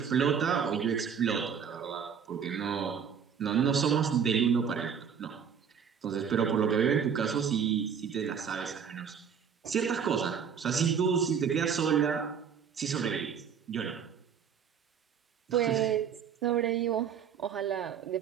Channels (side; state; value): left; quieter; 7.3 dB